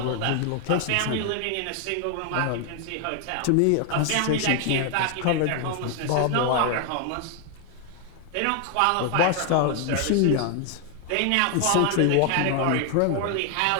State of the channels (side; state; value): both; different; correlation 0.00